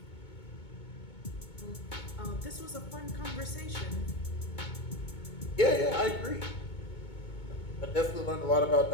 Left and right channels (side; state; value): right; late; 2.2 ms